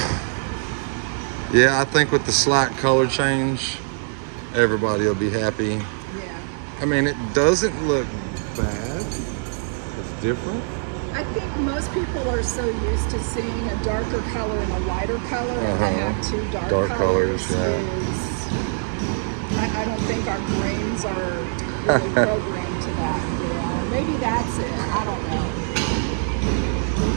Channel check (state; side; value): silent; left; 63 dB below the other